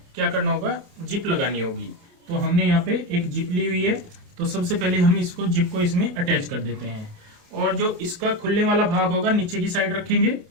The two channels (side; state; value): left; late; 28 ms